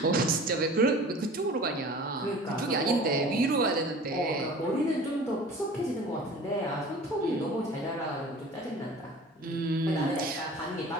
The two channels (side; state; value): both; normal; correlation 0.43